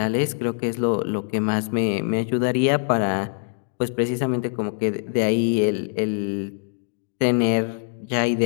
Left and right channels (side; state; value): right; silent; digital silence